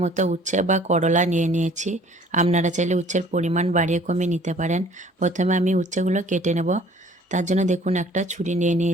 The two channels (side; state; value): both; normal; correlation 0.54